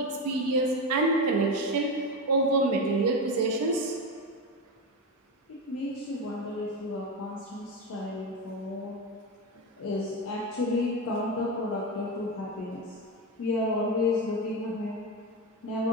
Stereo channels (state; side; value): normal; both; correlation 0.16